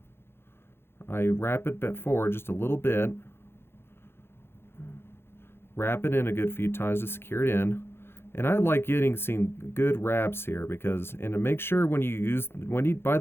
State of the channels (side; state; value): right; late; 0.11 ms